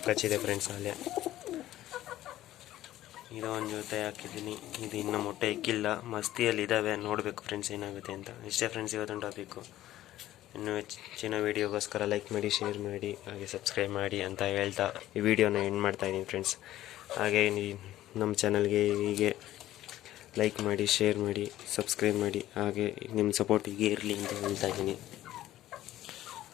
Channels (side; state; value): right; quieter; 14.1 dB